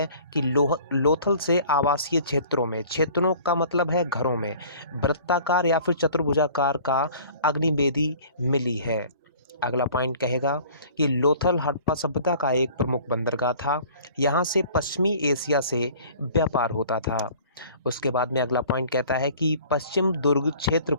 कि लोथल से आवासीय क्षेत्रों का मतलब है घरों में वृत्ताकार या फिर चतुर्भुजाकार का अग्निवेदी मिली है। अगला पॉइंट कहेगा कि लोथल हड़प्पा सभ्यता का एक प्रमुख बंदरगाह था। यहाँ से पश्चिमी एशिया से व्यापार होता था। उसके बाद में अगला पॉइंट कहता है कि पश्चिम दुर्ग क्षेत्र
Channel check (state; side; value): inverted; both; correlation -0.49